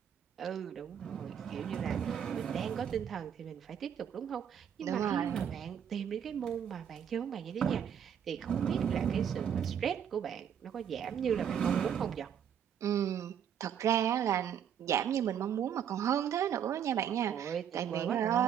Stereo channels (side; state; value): left; quieter; 8.6 dB